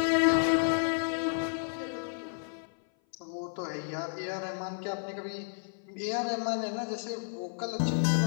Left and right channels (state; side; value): silent; right; 57 dB below the other